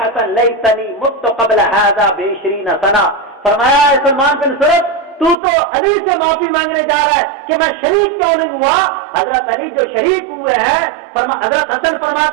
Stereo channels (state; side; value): drops out; left; at 5.4 s